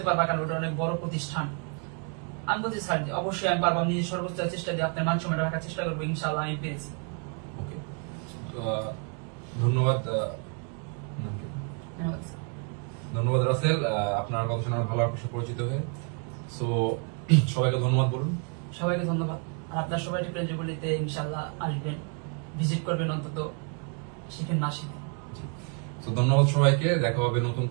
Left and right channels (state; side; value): quieter; left; 39.5 dB